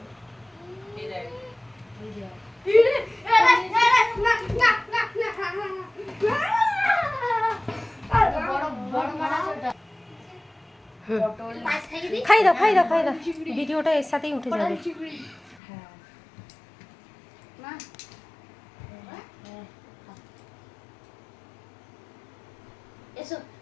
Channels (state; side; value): drops out; right; at 15.6 s